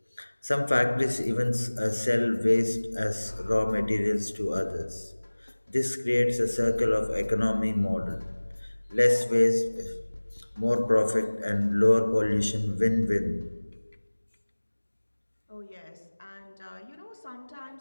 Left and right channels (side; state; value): both; inverted; correlation -1.00